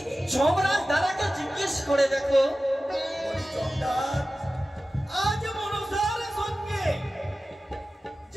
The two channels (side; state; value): both; normal; correlation 0.95